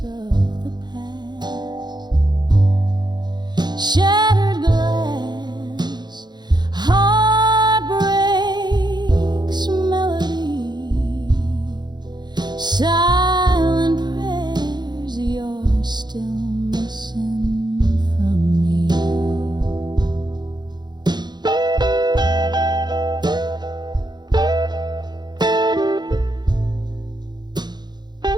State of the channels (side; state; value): left; late; 0.21 ms